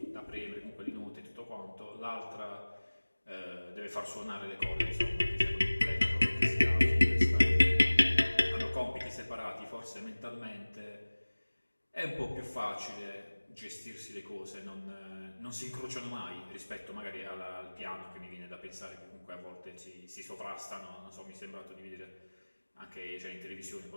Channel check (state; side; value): inverted; both; correlation -1.00